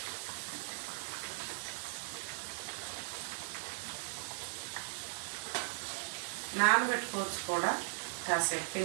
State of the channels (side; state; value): left; silent; digital silence